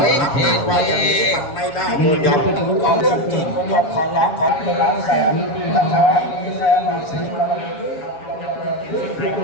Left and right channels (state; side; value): late; right; 7.2 ms